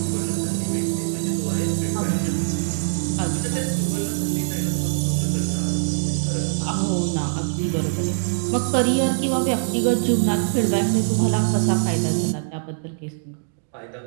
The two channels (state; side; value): silent; left; digital silence